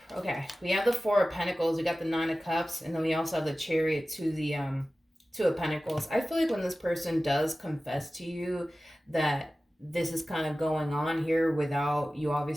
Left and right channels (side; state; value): both; normal; correlation 0.96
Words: Okay, we have the Four of Pentacles, we got the Nine of Cups, and then we also have the Chariot to the Two of Pentacles. I feel like when this person does confess to you that this is kind of going on here without you